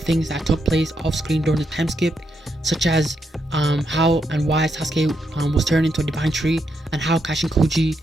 that took place off-screen during the time skip, such as how and why Sasuke was turned into a divine tree, and how Kashin Koji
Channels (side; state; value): both; normal; correlation 0.80